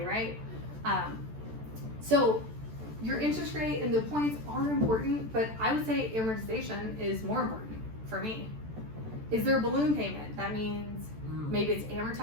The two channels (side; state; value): left; late; 14 ms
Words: right? So your interest rate and the points are important, but I would say amortization is more important for me. Is there a balloon payment? That means maybe it's